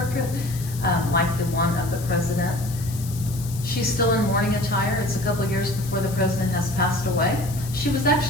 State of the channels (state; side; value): noise; left; hiss, 14 dB below the sound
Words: like the one of the president. She's still in mourning attire. It's a couple years before the president has passed away. She was